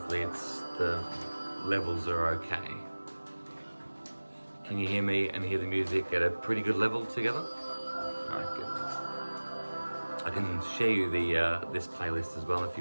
the levels are okay. Can you hear me and hear the music at a pretty good level together? All right, good. I can share you this playlist as well if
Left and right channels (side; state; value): both; inverted; correlation -1.00